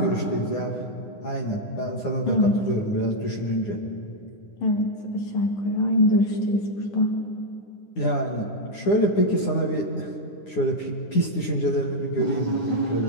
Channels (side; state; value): right; late; 9.7 ms